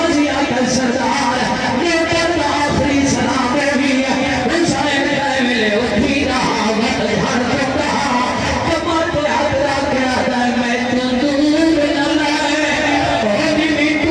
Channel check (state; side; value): identical; both; correlation 1.00